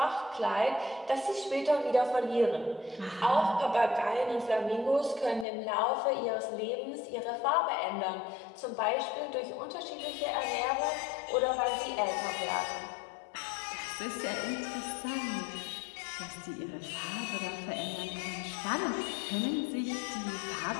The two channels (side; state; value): right; drops out; at 5.5 s